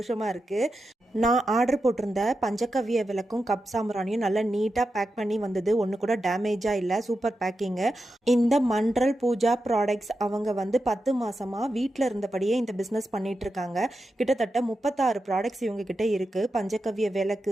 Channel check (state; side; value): normal; both; correlation 0.89